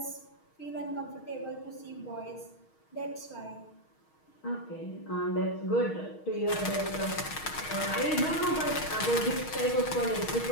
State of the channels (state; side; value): late; right; 6.4 ms